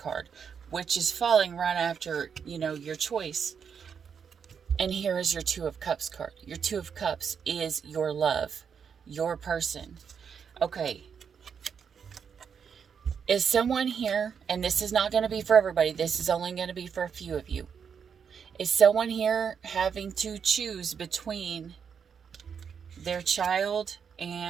which is falling right after, your choice. And here is your 2 of Cups card. Your 2 of Cups is your love, your person. Okay. Is someone here, and this is not going to be for everybody, this is only going to be for a few of you. Is someone here having to choose between their child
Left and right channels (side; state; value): left; quieter; 6.9 dB